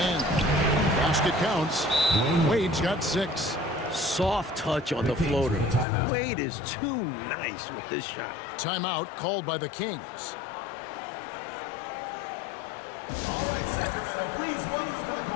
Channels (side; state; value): right; drops out; at 5.9 s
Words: Basket counts. Wade's got 6. Soft touch on the floater. Wade is too nice with this shot. Timeout called by the Kings. All right, Sacramento, please welcome to the